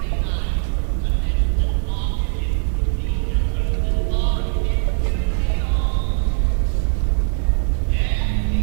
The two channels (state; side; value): silent; left; digital silence